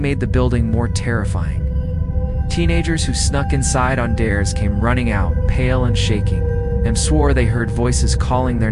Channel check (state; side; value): identical; both; correlation 1.00